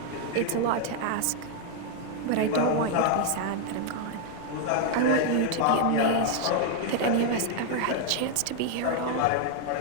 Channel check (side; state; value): both; different; correlation 0.00